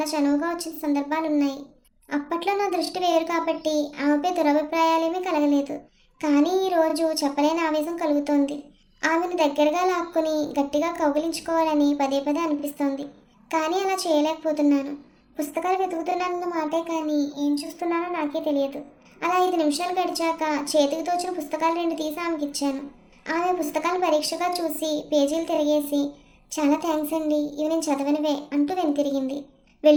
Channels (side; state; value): both; identical; correlation 1.00